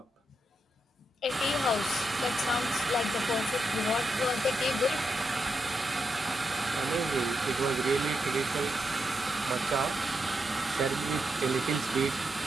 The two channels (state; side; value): normal; both; correlation 0.84